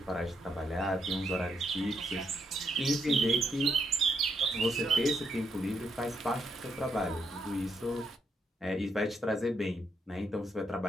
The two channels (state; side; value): normal; both; correlation 0.77